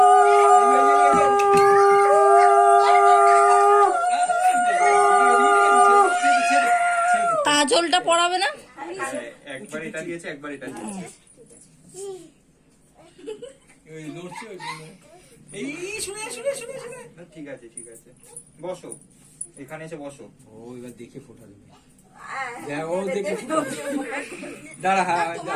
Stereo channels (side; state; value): both; identical; correlation 1.00